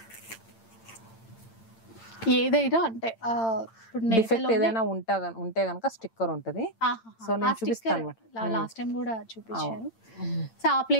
ఏదైనా అంటే డిఫెక్ట్ ఏదైనా ఉంటే గనక స్టిక్కర్ ఉంటది. సో నేను చూపిస్తాను. లాస్ట్ టైం కూడా చూపించారు. సో ఆ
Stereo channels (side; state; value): right; late; 8.9 ms